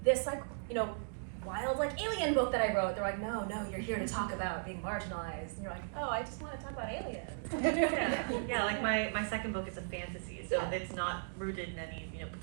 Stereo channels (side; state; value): left; silent; digital silence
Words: this, like, you know, wild like alien book that I wrote, they're like, no, you're here to talk about being marginalized, and you're like, oh, I just want to talk about aliens. Yeah, like my second book is a fantasy, so it's not rooted in any, you know,